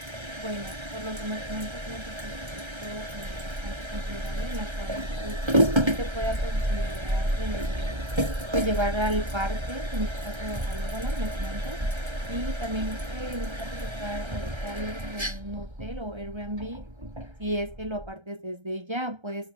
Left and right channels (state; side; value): late; left; 1.3 ms